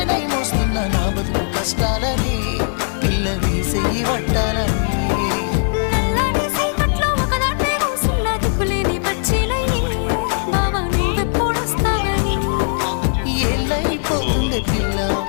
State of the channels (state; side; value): silent; right; digital silence